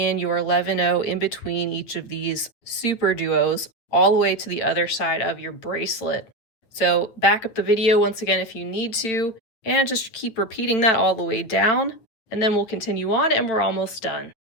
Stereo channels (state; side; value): late; right; 9.2 ms